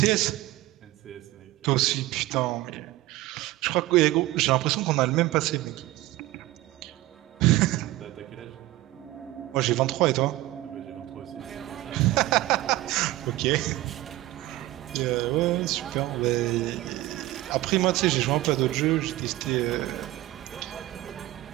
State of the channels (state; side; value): quieter; left; 17.2 dB